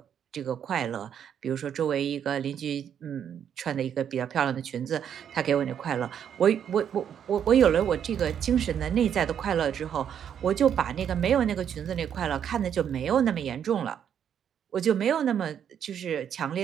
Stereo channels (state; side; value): quieter; left; 8.8 dB